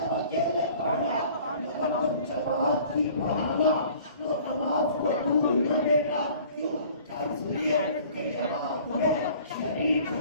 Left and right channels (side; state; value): both; inverted; correlation -0.50